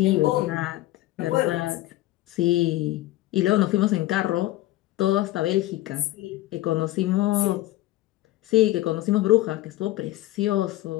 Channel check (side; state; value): right; quieter; 16.3 dB